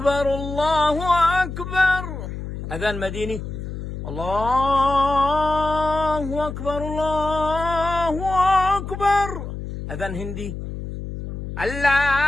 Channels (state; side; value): noise; left; hum, 8 dB below the sound